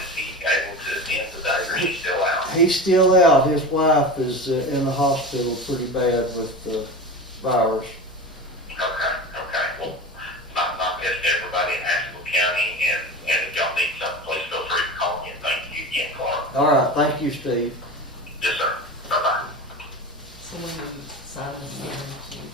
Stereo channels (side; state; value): both; normal; correlation 0.29